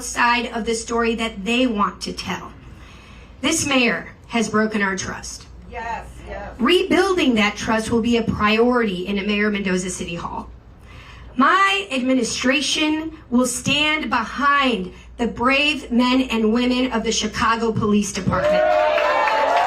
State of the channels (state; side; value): identical; both; correlation 1.00